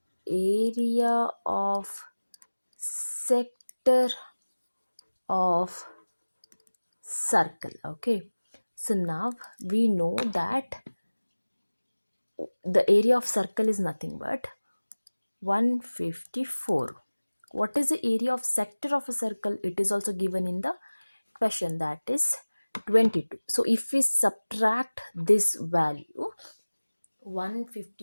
area of sector of circle. Okay, so now we know that the area of circle is nothing but 154. What is the area of sector of a circle? It is also given in the question, that is 22. So if we subtract this value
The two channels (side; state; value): both; inverted; correlation -1.00